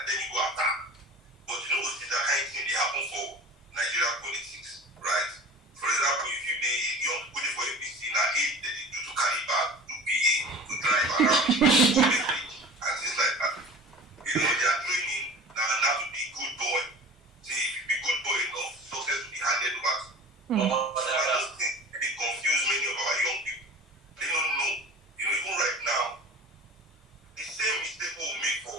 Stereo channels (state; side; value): normal; both; correlation 0.39